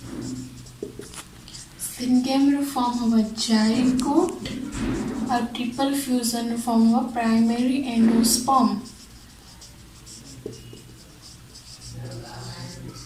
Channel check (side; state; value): both; identical; correlation 1.00